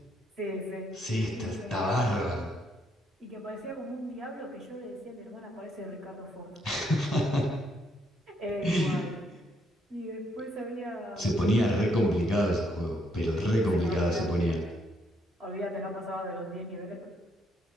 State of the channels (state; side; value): normal; both; correlation 0.73